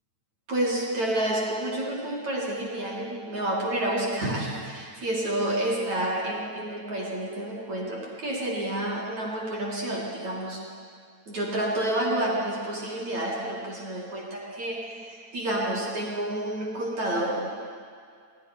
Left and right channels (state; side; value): late; left; 9.0 ms